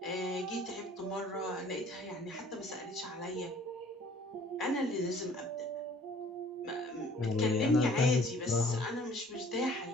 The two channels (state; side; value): normal; both; correlation 0.54